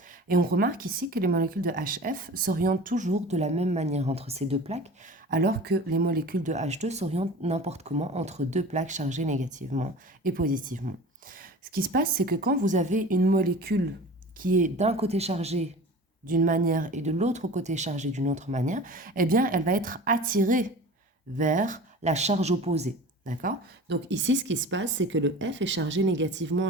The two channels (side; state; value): both; normal; correlation 0.38